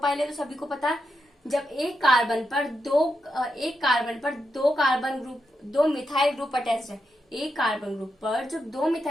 है, तो सभी को पता है। जब एक कार्बन पर दो मिथाइल ग्रुप अटैच्ड है, एक कार्बन ग्रुप पर जब दो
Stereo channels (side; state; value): both; normal; correlation 0.85